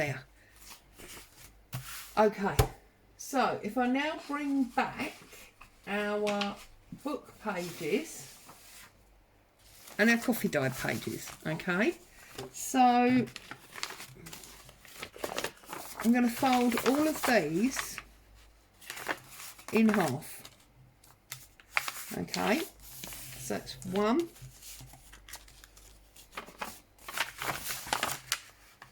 Okay, so if I now bring back our book pages and our coffee dye pages, okay, so I'm going to fold all of these in half. Okay, so that's 1,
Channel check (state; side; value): identical; both; correlation 1.00